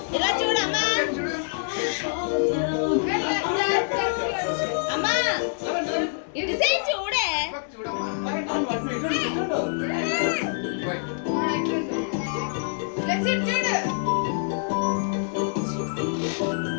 ఇలా చూడమ్మా అమ్మా ఇటు సైడ్ చూడే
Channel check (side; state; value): right; silent; 61 dB below the other